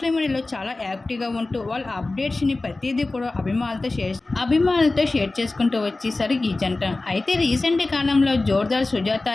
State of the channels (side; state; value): right; quieter; 3.2 dB